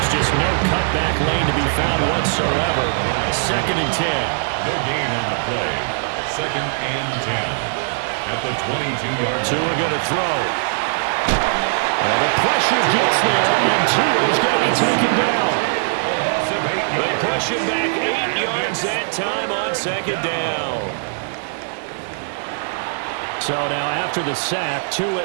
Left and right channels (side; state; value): left; silent; digital silence